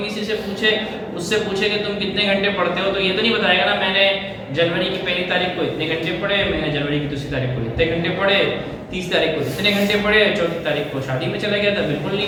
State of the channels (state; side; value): identical; both; correlation 1.00